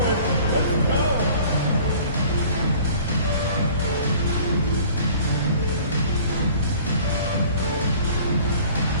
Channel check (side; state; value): both; inverted; correlation -0.49